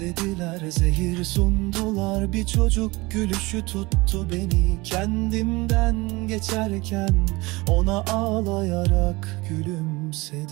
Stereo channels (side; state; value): left; quieter; 22.9 dB